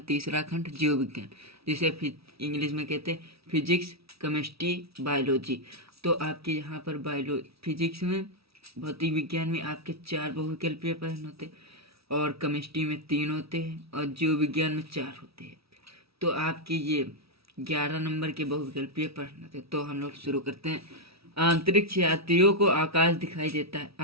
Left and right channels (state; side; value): late; left; 0.76 ms